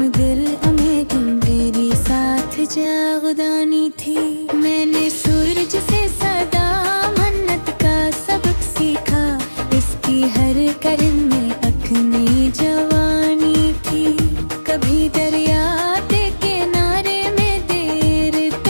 मेरी मेरी साथ जागदानी थी। मैंने सूरज से सदा मन्नत का सबक सीखा, इसकी हर करन में अपनी जवानी थी। कभी दरिया के किनारे में देर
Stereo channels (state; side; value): inverted; both; correlation -1.00